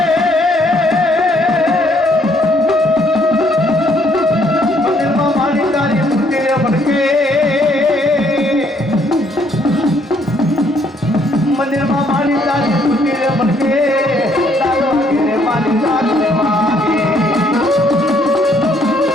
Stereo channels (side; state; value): both; normal; correlation 0.67